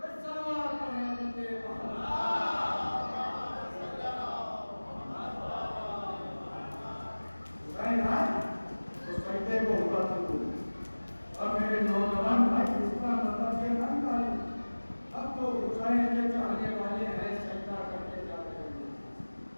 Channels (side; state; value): both; inverted; correlation -1.00